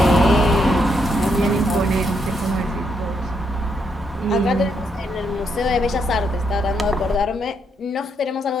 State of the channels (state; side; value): normal; both; correlation 0.77